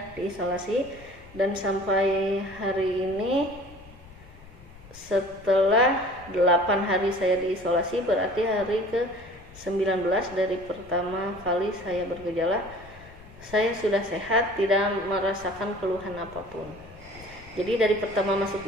diisolasi, dan sampai hari ini setelah 8 hari saya diisolasi, berarti hari ke-19 dari pertama kali saya bergejala, saya sudah sehat, tidak merasakan keluhan apapun. Jadi dari pertama masuk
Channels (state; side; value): noise; left; rumble, 21 dB below the sound